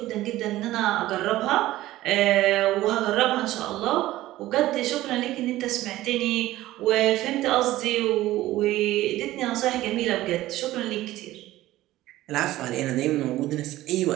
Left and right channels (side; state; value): left; quieter; 15.9 dB